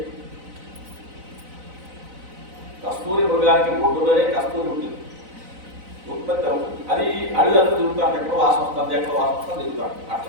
కస్తూరి మృగానికి బొడ్డులోనే కస్తూరి ఉంటుంది, ఉత్పత్తి అవుతుంది. అది అడుగంతా తిరుగుతాడు, ఎక్కడో వాసన వస్తుంది, ఎక్కడో వాసన వస్తుంది, తిరుగుతాడు.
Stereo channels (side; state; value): left; late; 4.0 ms